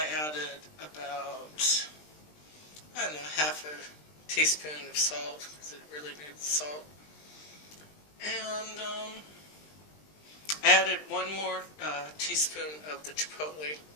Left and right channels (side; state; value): right; late; 20 ms